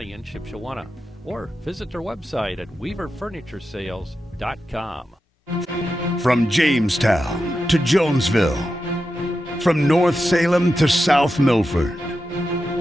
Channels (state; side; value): normal; both; correlation 0.90